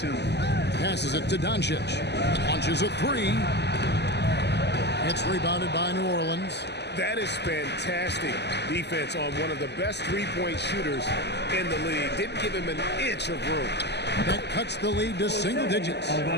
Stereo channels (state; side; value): late; right; 0.50 ms